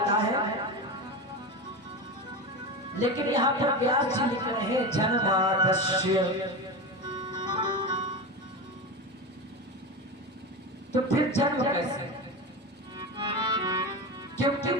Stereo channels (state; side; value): normal; both; correlation 0.22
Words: है, लेकिन यहाँ पर व्यास जी लिख रहे हैं जन्माधस्य। तो फिर जन्म कैसे? क्योंकि